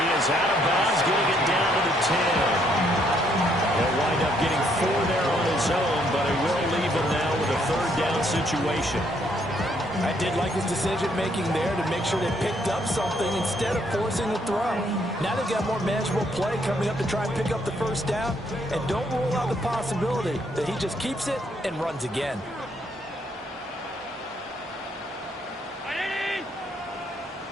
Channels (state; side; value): normal; both; correlation 0.70